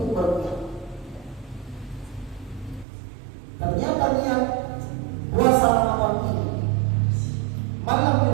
berniat? Ternyata niat puasa Ramadan ini malam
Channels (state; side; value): drops out; left; at 2.9 s